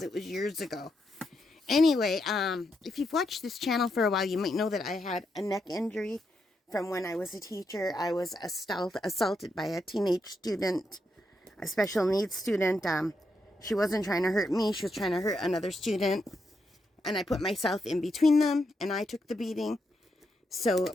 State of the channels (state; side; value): normal; both; correlation 0.82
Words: it was years ago. Anyway, if you've watched this channel for a while, you might know that I had a neck injury from when I was a teacher. I was assaulted by a teenage student, a special needs student. She wasn't trying to hurt me. She was trying to hurt another student. And I put myself in between them, and I took the beating. So